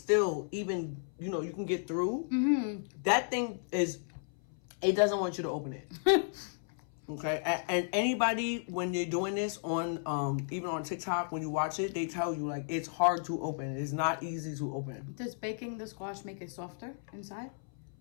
even, you can get through. That thing is, it doesn't want you to open it. Okay? And anybody, when you're doing this on, even on TikTok, when you watch it, they tell you, like, it's hard to open. It's not easy to open. Does baking the squash make it softer inside?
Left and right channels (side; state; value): right; silent; 55 dB below the other